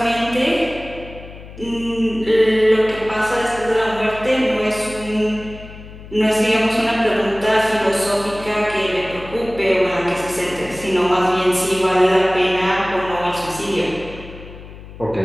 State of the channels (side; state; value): left; noise; hum, 16 dB below the sound